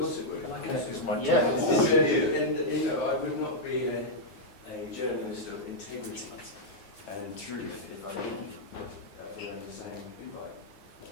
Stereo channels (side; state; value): right; late; 9.9 ms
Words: it would. It's my Yeah. And you know, I would not be a journalist of integrity and truth if I didn't learn the same invite.